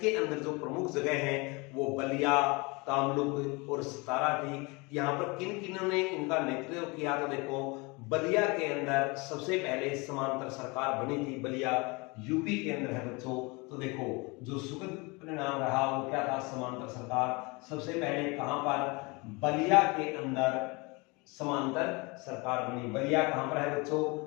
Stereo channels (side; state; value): right; quieter; 27.2 dB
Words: अंदर जो प्रमुख जगह हैं वो बलिया, तामलुक और सतारा थी। यहाँ पर किन किन्हों ने इनका नेतृत्व किया? तो देखो, बलिया के अंदर सबसे पहले समांतर सरकार बनी थी, बलिया यूपी के अंदर है बच्चों। तो देखो, जो सुखद परिणाम रहा वो क्या था? समांतर सरकार सबसे पहले कहां पर? बलिया के अंदर समांतर सरकार बनी। बलिया कहां पर है बच्चों?